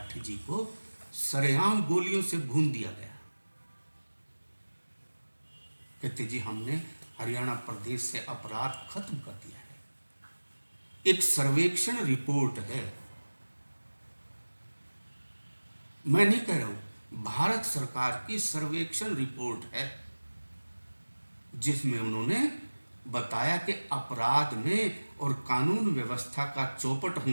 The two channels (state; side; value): inverted; both; correlation -1.00